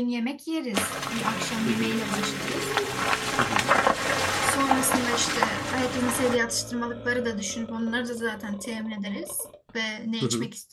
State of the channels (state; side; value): identical; both; correlation 1.00